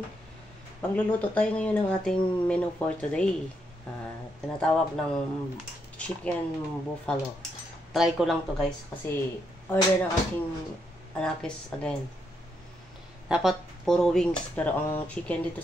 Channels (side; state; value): both; normal; correlation 0.78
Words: Magluluto tayo ngayon ng ating menu for today. Tinatawag ng chicken buffalo. Try ko lang to guys kasi order ng aking anakis again. Dapat puro wings pero ang chicken dito